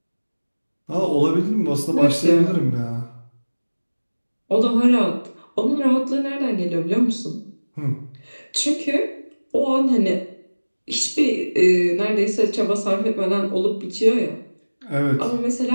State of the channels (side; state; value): both; inverted; correlation -1.00